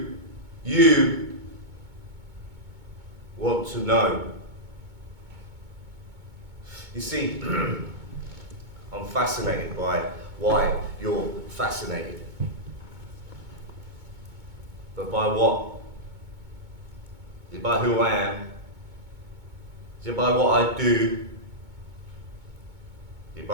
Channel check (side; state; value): left; late; 2.2 ms